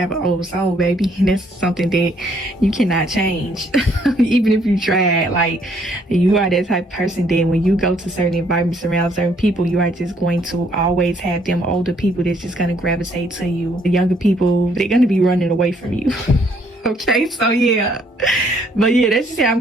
an old soul, baby, and that's something that you cannot change. Even if you try. Like, you are that type of person that when you go to certain environments around certain people, you are just going to always have them older people that's just going to gravitate to you. The younger people, they're going to be running away from you. Okay, so yeah, but yeah, that's just how I'm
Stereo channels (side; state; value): both; normal; correlation 0.66